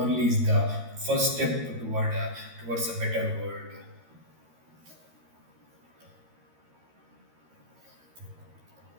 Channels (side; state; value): left; late; 13 ms